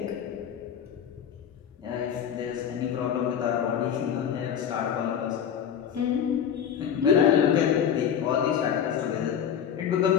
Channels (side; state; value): right; quieter; 8.5 dB